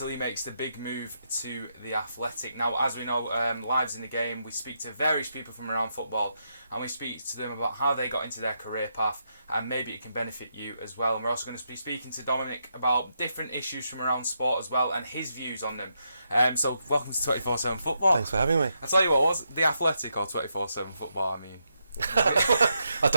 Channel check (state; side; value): inverted; both; correlation -0.82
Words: he makes the big move to The Athletic. Now, as we know, Lives in the Game, we speak to various people from around football and we speak to them about how they got into their career path, and maybe it can benefit you as well. And we're also going to be speaking to Dominic about different issues from around sport as well and his views on them. So welcome to 24/7 Football. Thanks for having me. I'll tell you what, was it The Athletic or 24/7 Football? I mean, I